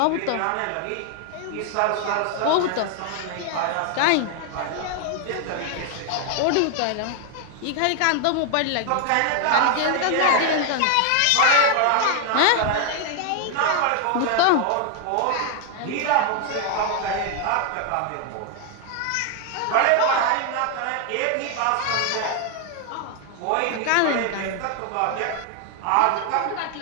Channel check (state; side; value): different; both; correlation 0.00